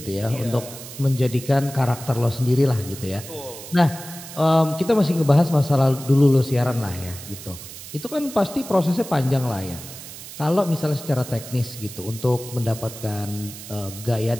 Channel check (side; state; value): right; noise; hiss, 13 dB below the sound